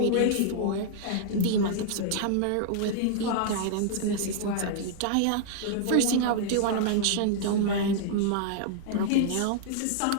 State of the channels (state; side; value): different; both; correlation -0.01